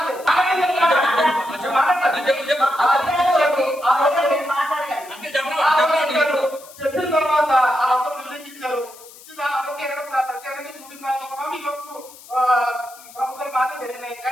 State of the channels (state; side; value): noise; left; hiss, 20 dB below the sound